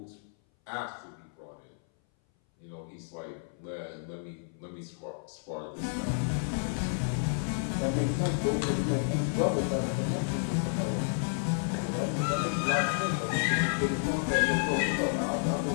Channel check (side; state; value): right; silent; 57 dB below the other